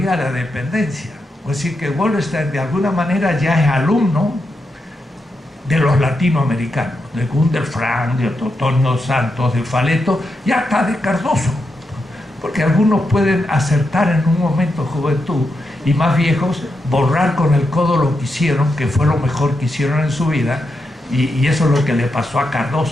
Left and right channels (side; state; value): both; normal; correlation 0.85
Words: de la dependencia. Es decir, que Wallerstein de alguna manera ya es alumno de los latinoamericanos, de Gunder Frank, de Totonio Santos, de Faleto, y hasta de Cardoso, porque algunos pueden acertar en un momento de juventud y más viejos borrar con el codo lo que hicieron, que fue lo mejor que hicieron en su vida, y eso es lo que le pasó a